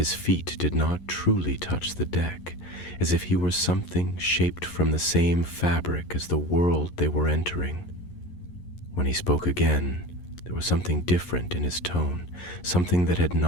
feet did not truly touch the deck, as if he were something shaped from the same fabric as the world they were entering. When he spoke again, there was something different in his tone, something that had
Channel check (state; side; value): late; right; 11 ms